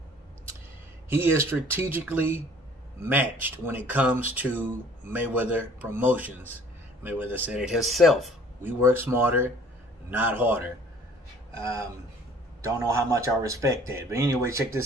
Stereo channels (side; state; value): both; normal; correlation 0.53